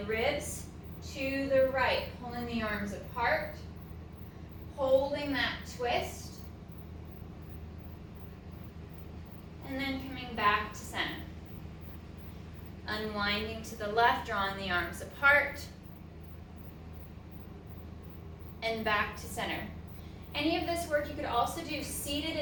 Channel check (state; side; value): identical; both; correlation 1.00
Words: to the right, pulling the arms apart, holding that twist, and then coming back to center. Unwinding to the left, drawing the arms apart, and back to center. Any of this work you could also do seated